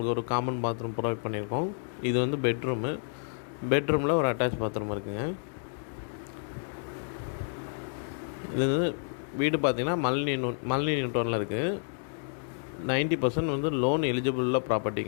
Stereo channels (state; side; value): silent; right; digital silence